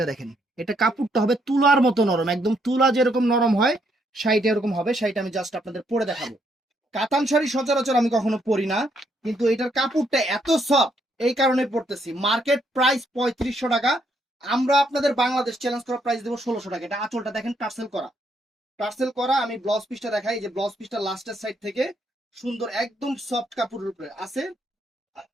দেখেন, এটা কাপড়টা হবে তুলার মতো নরম, একদম তুলা যেরকম নরম হয় শাড়িটা এরকম হবে। শাড়িটা আমি জাস্ট আপনাদের পরে দেখাবো। কাতান শাড়ি সচরাচর আমি কখনো পরি না, কিন্তু এটার কাপড়টা এত সফট, এই কারণে পরতেছি। মার্কেট প্রাইস 3500 টাকা, আমরা আপনাদের বাংলাদেশ চ্যালেঞ্জ করা প্রাইস দেবো 1600 টাকা। এটা আঁচলটা দেখেন টার্সেল করা, টার্সেল করা। আমি ব্লাউজ পিসটা দেখাই, যে ব্লাউজ পিসটা লাস্টের সাইড থেকে সুন্দর একদম সফট কাপড়ের উপরে আছে।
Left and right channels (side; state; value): both; normal; correlation 0.73